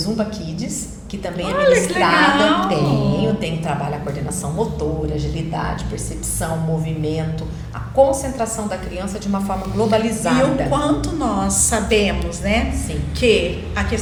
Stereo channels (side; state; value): both; identical; correlation 1.00